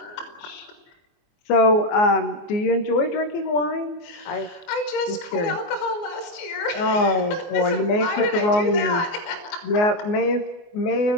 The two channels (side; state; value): right; late; 24 ms